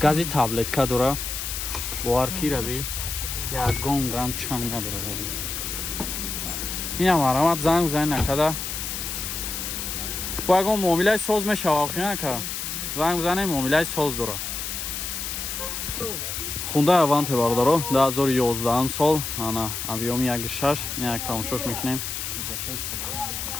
таблетка дора. Боварки раби. Ягон грамм чанг надорад аз ин. Инам марамат занг бизанед накада. Бо ягон муомилаи соз мешавад охинака. Занг бизанед муомилаи соз дора. Хундай Аванте бародаро 2011 сол ана объёми 1.6 ина як тамошош мекунем.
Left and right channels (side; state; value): left; noise; hiss, 4 dB below the sound